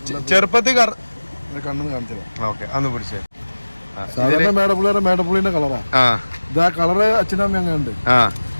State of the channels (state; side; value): inverted; both; correlation -1.00